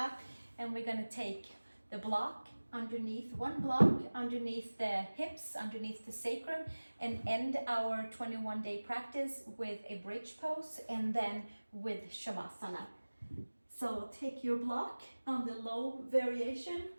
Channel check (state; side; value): inverted; both; correlation -1.00